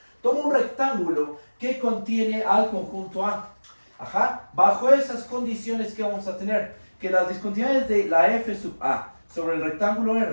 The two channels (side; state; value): both; inverted; correlation -1.00